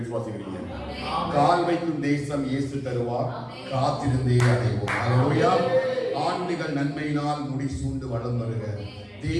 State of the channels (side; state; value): both; identical; correlation 1.00